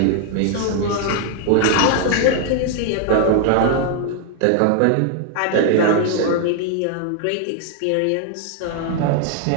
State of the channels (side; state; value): both; different; correlation 0.00